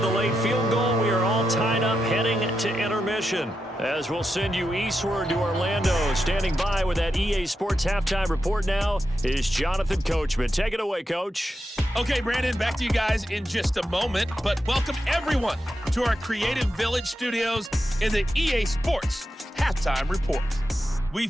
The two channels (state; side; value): normal; both; correlation 0.87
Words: late field goal, we are all tied up heading to intermission, as we'll send you eastward to Orlando go. Standing by with that EA Sports halftime report now is Jonathan Coachman. Take it away, Coach. Okay, Brandon, back to you guys in just a moment. But welcome everyone to our Creative Village studios in the EA Sports halftime report. We